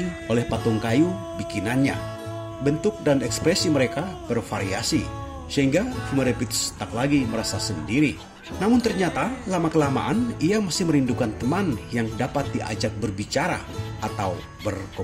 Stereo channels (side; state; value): both; identical; correlation 1.00